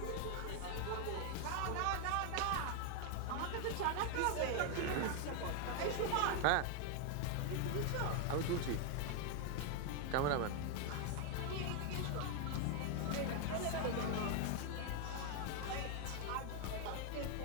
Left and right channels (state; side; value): different; both; correlation 0.01